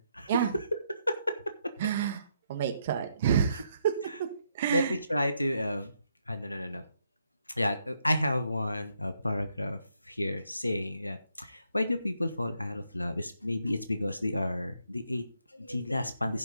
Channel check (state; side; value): inverted; both; correlation -0.76